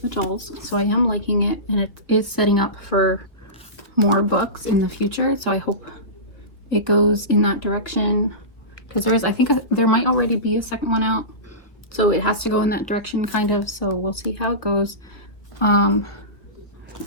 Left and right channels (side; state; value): right; late; 1.9 ms